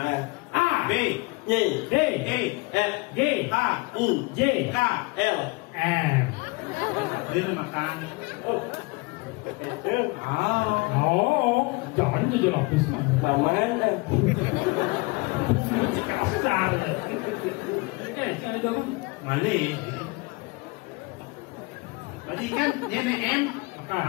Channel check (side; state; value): right; quieter; 25.9 dB